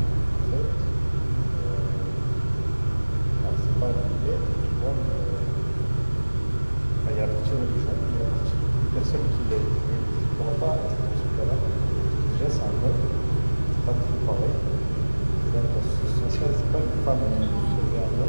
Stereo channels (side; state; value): both; inverted; correlation -1.00